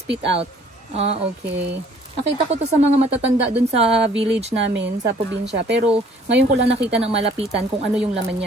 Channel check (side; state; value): both; normal; correlation 0.57